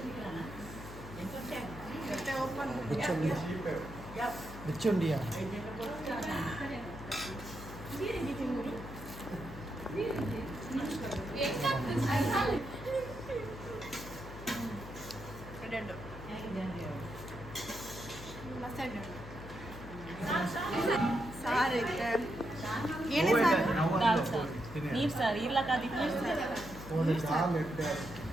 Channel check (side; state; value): left; noise; hum, 13 dB below the sound